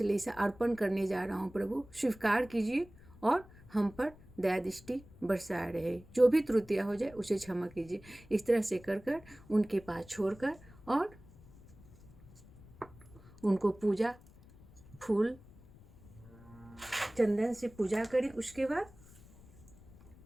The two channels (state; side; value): noise; left; rumble, 22 dB below the sound